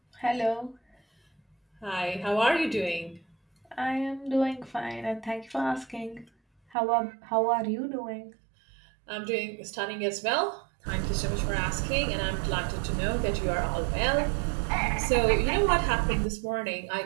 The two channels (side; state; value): left; drops out; at 6.8 s